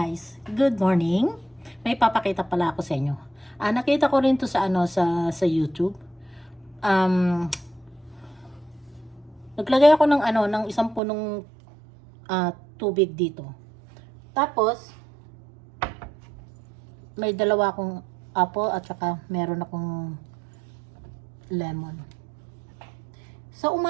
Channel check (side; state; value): left; drops out; at 11.0 s